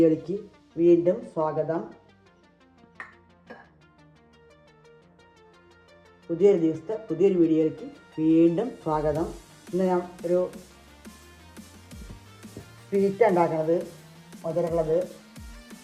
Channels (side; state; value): both; identical; correlation 1.00